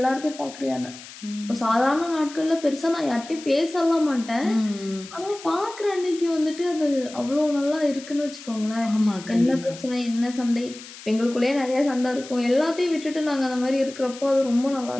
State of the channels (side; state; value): left; noise; hiss, 16 dB below the sound